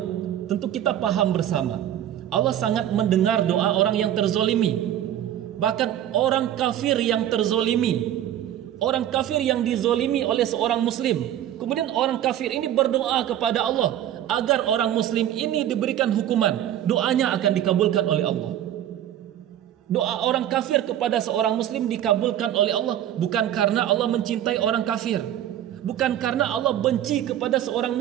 tentu kita paham bersama, Allah sangat mendengar doa orang yang terzolimi. Bahkan orang kafir yang terzolimi, orang kafir yang dizolimi oleh seorang muslim, kemudian orang kafir ini berdoa kepada Allah agar orang muslim ini diberikan hukuman, doanya akan dikabulkan oleh Allah. Doa orang kafir kepada seorang muslim dikabulkan oleh Allah bukan karena Allah mencintai orang kafir, bukan karena Allah benci kepada seorang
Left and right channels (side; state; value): left; quieter; 11.4 dB